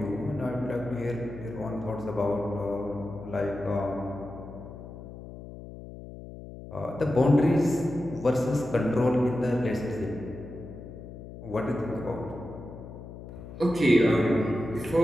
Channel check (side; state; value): left; noise; hum, 13 dB below the sound